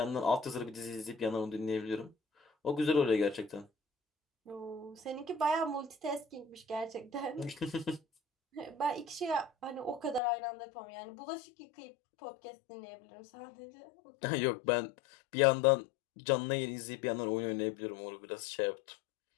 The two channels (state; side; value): drops out; right; at 10.2 s